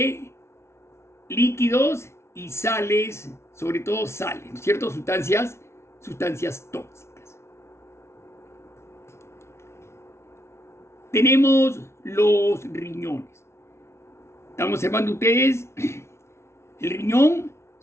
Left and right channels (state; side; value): late; right; 0.13 ms